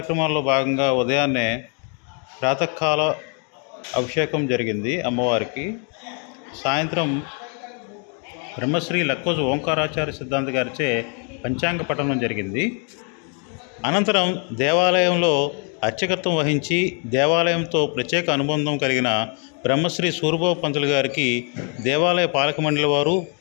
భాగంగా ఉదయాన్నే ప్రాతకాల అభిషేకం జరిగింది అమ్మవారికి. సాయంత్రం బ్రహ్మశ్రీ లక్కోజు ఓంకారాచార్య సిద్ధాంత గారిచే పంచాంగ పఠనం జరిగింది. అనంతరం దేవాలయంలో అర్చకత్వం వహించి దేవాలయంతో ప్రత్యేక అనుబంధం కలిగిన బ్రహ్మశ్రీ సూరిబాబు పంతులు గారికి దేవాలయ పాలక మండలి వారు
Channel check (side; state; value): right; quieter; 39.6 dB